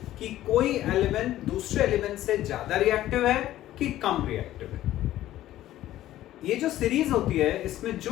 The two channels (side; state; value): right; quieter; 13.9 dB